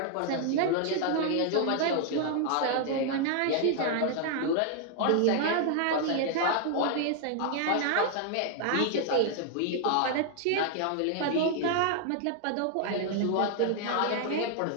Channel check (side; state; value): both; different; correlation 0.00